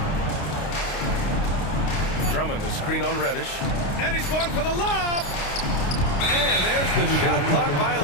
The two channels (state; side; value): late; right; 29 ms